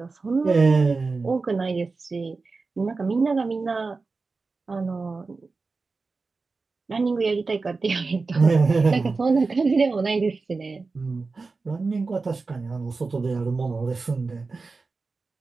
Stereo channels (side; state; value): left; quieter; 4.1 dB